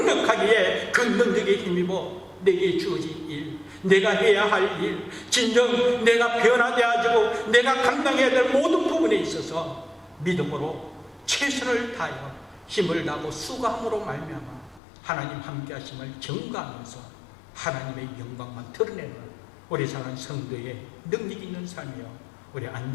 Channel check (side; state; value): right; drops out; at 14.8 s